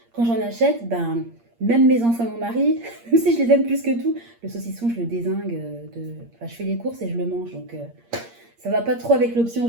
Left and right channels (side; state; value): left; late; 8.6 ms